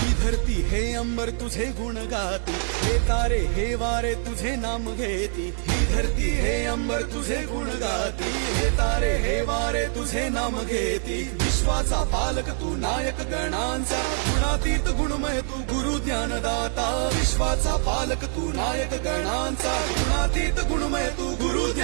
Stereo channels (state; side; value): silent; left; 56 dB below the other